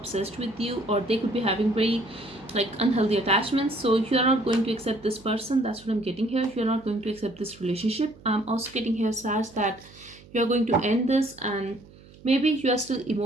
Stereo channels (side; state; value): right; noise; hum, 23 dB below the sound